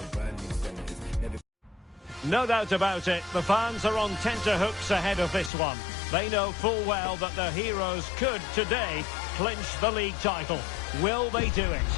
brand new senators. Never. No doubt about it, the fans are on tenterhooks ahead of this one. They know full well that their heroes could, today, clinch the league title. Will they do it?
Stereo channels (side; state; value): right; drops out; at 5.5 s